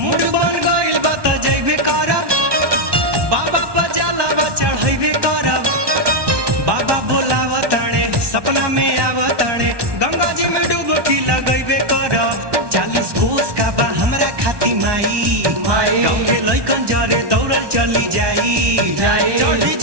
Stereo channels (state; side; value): late; left; 1.2 ms